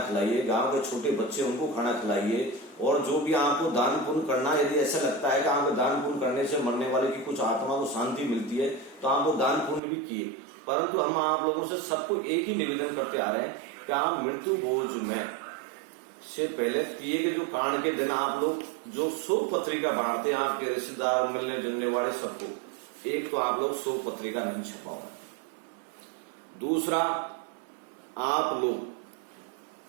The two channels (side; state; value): left; drops out; at 9.8 s